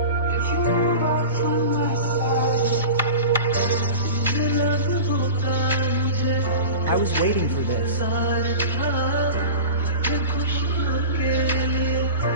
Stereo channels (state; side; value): inverted; both; correlation -0.32